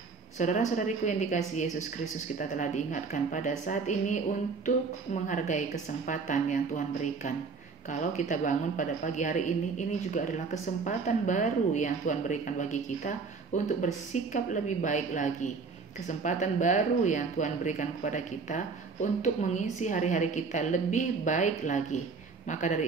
Saudara-saudariku yang dikasihi Yesus Kristus, kita telah diingatkan pada saat ini untuk menghargai kesempatan yang Tuhan berikan. Kalau kita bangun pada pagi hari ini juga adalah kesempatan baru yang Tuhan berikan bagi kita untuk bersikap lebih baik lagi. Kesempatan baru yang Tuhan berikan kepada kita untuk mengisi hari-hari kita lebih baik lagi. Maka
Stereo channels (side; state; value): left; quieter; 4.7 dB